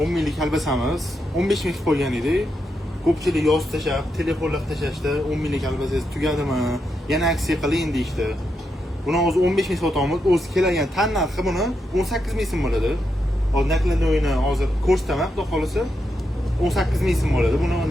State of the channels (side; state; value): both; normal; correlation 0.84